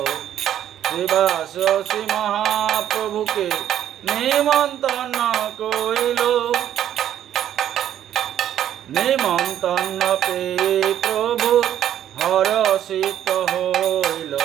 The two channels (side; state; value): left; quieter; 10.9 dB